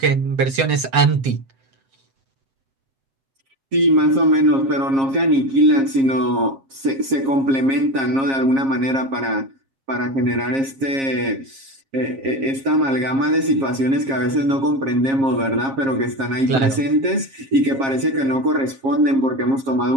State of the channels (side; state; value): left; late; 7.4 ms